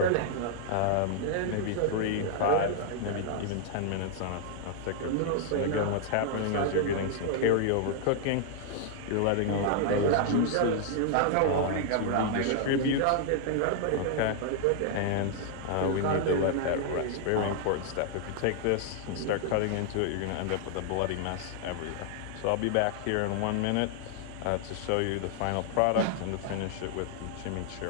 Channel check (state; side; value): different; both; correlation 0.00